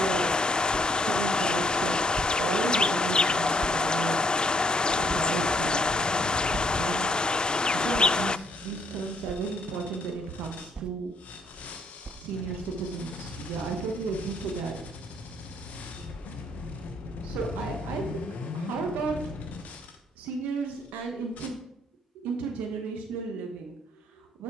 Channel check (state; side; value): normal; both; correlation 0.68